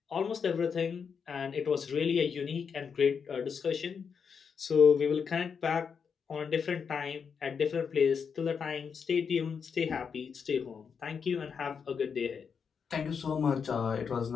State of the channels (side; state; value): right; quieter; 6.3 dB